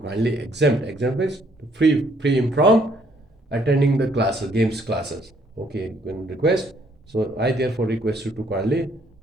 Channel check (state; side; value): normal; both; correlation 0.66